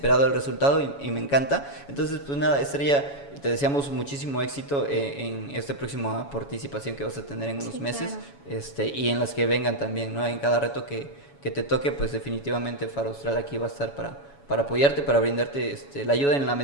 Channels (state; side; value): late; right; 7.1 ms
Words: el resultado y me encanta. Entonces, pues nada, Estrella, te deseamos muchísimo éxito en esta próxima participación que vas a tener en unos meses, claro. Y en las que vengan también, ¿no? En cada reto que te toque, pues definitivamente Faro Austral aquí va a estar para apoyarte, para brindarte la ayuda en la